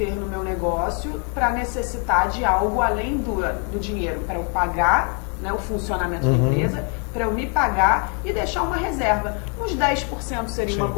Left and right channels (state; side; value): quieter; right; 38.5 dB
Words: no meu negócio para necessitar de algo além do dinheiro, para eu pagar, né, o funcionamento da empresa, para eu me pagar e deixar uma reserva. Uns 10% seria uma